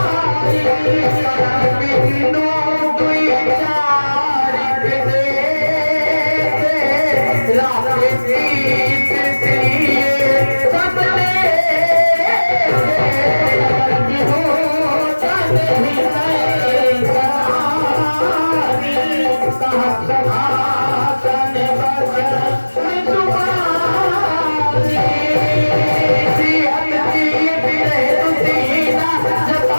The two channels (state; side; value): inverted; both; correlation -1.00